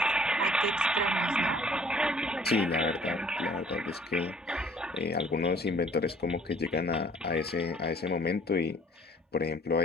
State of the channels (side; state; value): both; normal; correlation 0.56